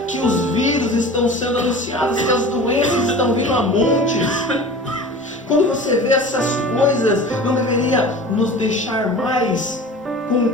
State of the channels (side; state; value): both; normal; correlation 0.38